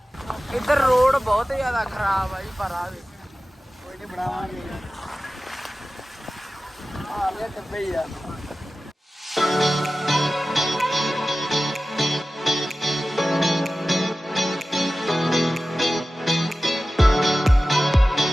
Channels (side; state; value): both; normal; correlation 0.96